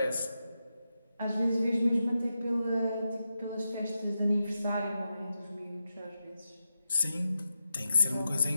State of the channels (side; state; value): both; inverted; correlation -0.88